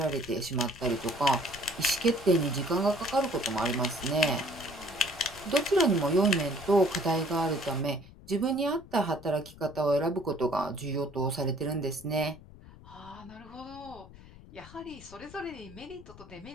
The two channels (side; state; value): left; noise; rumble, 19 dB below the sound